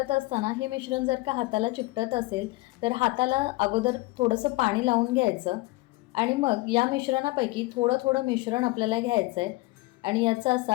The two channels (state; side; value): quieter; right; 21.4 dB